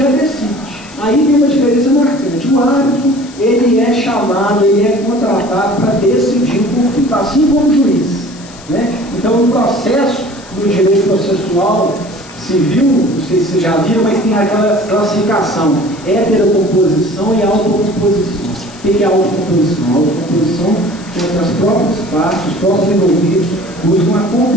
decide. Aí tem uma diferença marcante. O árbitro, ele é chamado, ele é contratado para decidir o conflito, assim como o juiz. Né? Então, no processo do direito processual civil, não sei se vocês já viram, mas tem aquela classificação, heterocomposição e autocomposição. O que é a autocomposição? A autocomposição é as próprias partes, os próprios envolvidos buscam a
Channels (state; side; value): noise; left; hiss, 20 dB below the sound